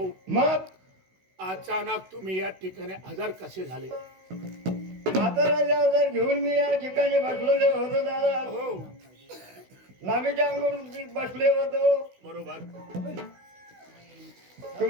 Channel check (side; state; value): left; late; 16 ms